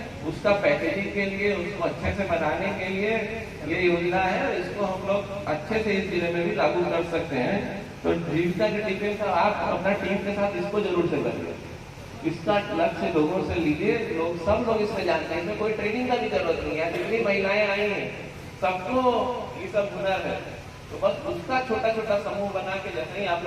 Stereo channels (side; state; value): both; identical; correlation 1.00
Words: उसका पैकेजिंग के लिए, उसको अच्छे से बनाने के लिए ये योजना है, और इसको हम लोग अच्छे से इस जिले में भी लागू कर सकते हैं। तो जीविका के टीम का आप अपना टीम के साथ इसको जरूर से करिए। इसका लक्ष्य लोगों से लीजिए, सब लोग इसमें जानते हैं, इसमें कोई ट्रेनिंग का भी जरूरत नहीं है। जितनी महिलाएं आई हैं सबको ये सब हुनर है, तो बस उसका छोटा छोटा समूह बना के जैसे ही आप